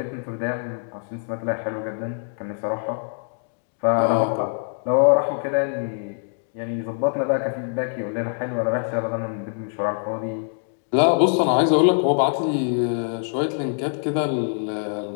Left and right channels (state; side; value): silent; right; digital silence